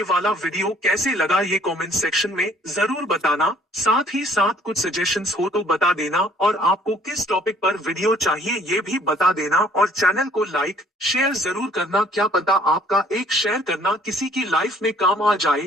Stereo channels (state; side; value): normal; both; correlation 0.58